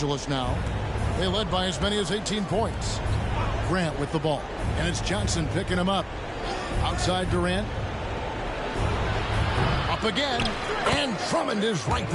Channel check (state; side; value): identical; both; correlation 1.00